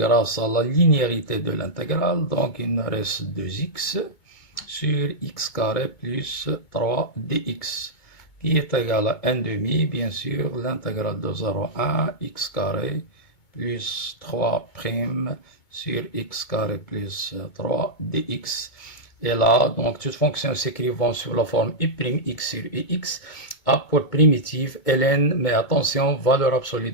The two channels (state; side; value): late; right; 2.2 ms